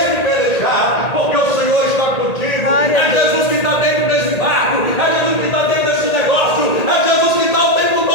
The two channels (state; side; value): late; right; 1.8 ms